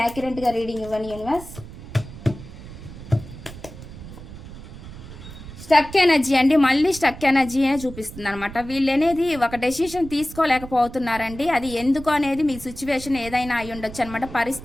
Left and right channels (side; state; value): right; noise; rumble, 14 dB below the sound